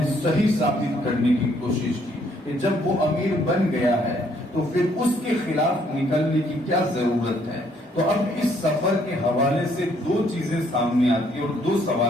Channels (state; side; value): normal; both; correlation 0.67